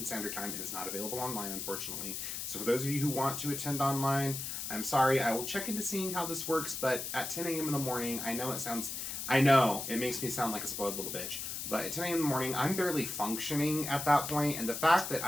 Standard Time. It is not available online, unfortunately. So for those of you who want to attend online, I'm sorry. I will check into seeing how this works, but at 10 a.m. in the morning, I know it makes me sound like a spoiled little bitch, but at 10 a.m. in the morning, I'm barely functioning at that point, and the fact that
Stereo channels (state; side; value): noise; left; hiss, 5 dB below the sound